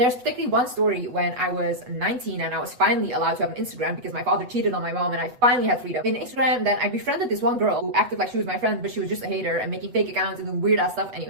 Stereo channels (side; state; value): left; late; 8.1 ms